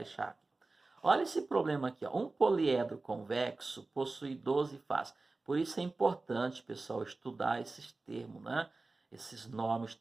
aqui. Olha esse problema aqui, ó. Um poliedro convexo possui 12 faces. Por isso é importante, pessoal, estudar esses termos, né? Esses nomes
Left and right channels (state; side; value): quieter; left; 3.4 dB